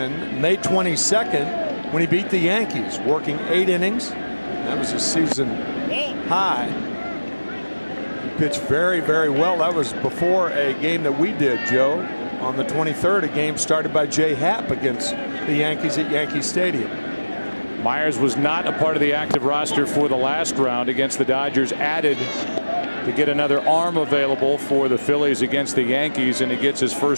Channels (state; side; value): inverted; both; correlation -1.00